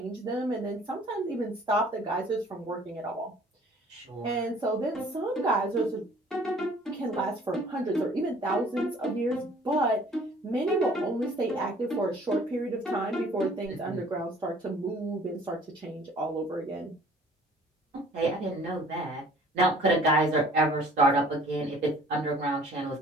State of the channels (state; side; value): normal; both; correlation 0.54